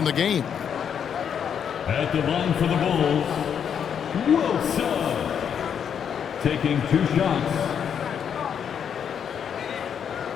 the game. At the line for the Bulls, Wilson. Taking 2 shots.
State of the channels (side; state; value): right; quieter; 8.0 dB